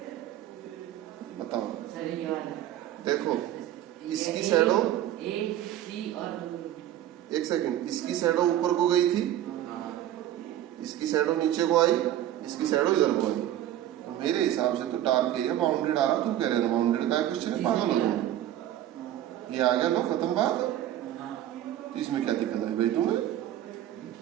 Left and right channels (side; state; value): left; quieter; 12.4 dB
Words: बताओ। देखो इसकी शैडो, एक सेकंड, इसकी शैडो ऊपर को गई थी, इसकी शैडो नीचे को आई, इसकी शैडो इधर को आई। तो मेरे हिसाब से तो डार्क एरिया बाउंडेड आ रहा, तुम कह रहे हो बाउंडेड का क्वेश्चन है, पागल हो जाओ, ये आ गया, लो खत्म बात। तो इसमें क्या दिक्कत है भाई तुम्हें,